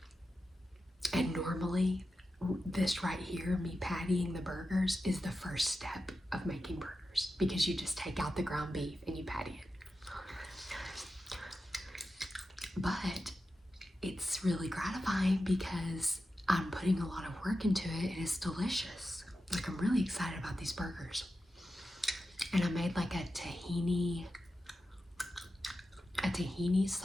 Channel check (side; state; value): both; normal; correlation 0.91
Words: And normally, this right here, me pattying the burgers, is the first step of making burgers, because you just take out the ground beef and you patty it. But it's really gratifying because I'm putting a lot of work into it, and it's delicious. Like, I'm really excited about these burgers. And I made like a tahini